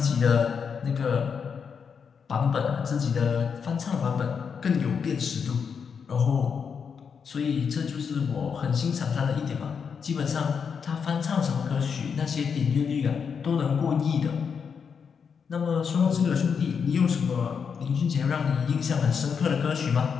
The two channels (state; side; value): quieter; right; 6.4 dB